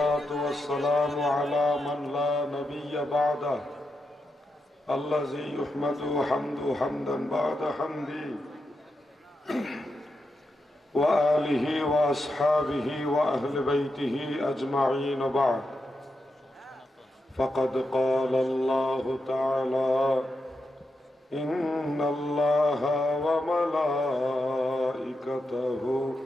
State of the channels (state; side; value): normal; both; correlation 0.86